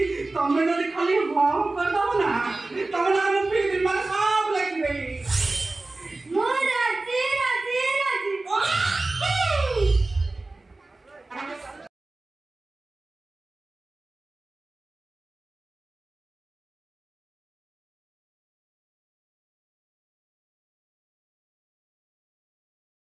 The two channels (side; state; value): left; quieter; 3.2 dB